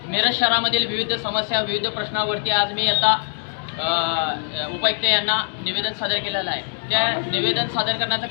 मिरज शहरामधील विविध समस्या, विविध प्रश्नावरती आज मी आता उपायुक्त यांना निवेदन सादर केलेलं आहे। त्या निवेदन सादर करण्याचं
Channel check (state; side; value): silent; right; digital silence